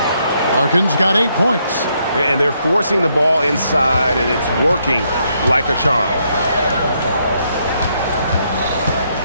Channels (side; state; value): both; inverted; correlation -0.75